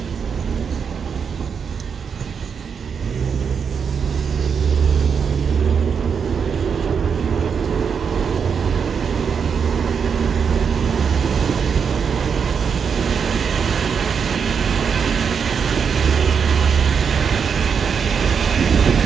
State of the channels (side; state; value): left; quieter; 6.5 dB